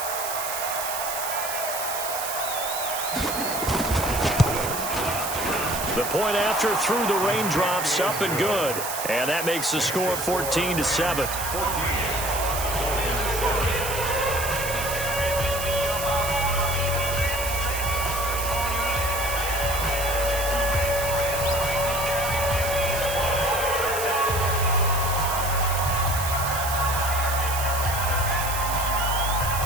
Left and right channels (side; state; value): right; noise; hiss, 5 dB below the sound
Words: The point after through the raindrops, up and good. And that makes the score 14-7.